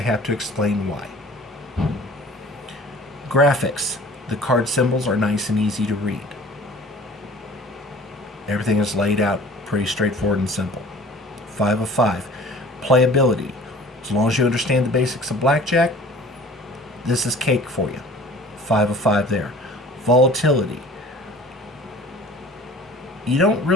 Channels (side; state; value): both; normal; correlation 0.46